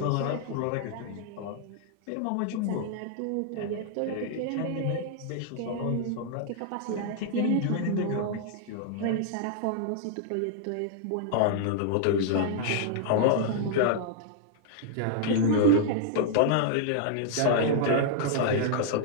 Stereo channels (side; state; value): both; different; correlation -0.01